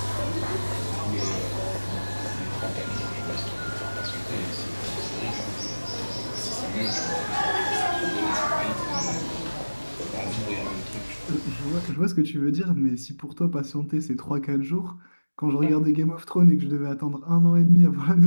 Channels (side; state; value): both; inverted; correlation -1.00